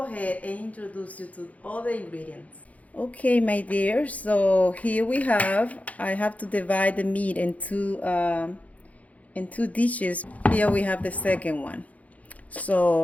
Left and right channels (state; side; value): late; right; 0.069 ms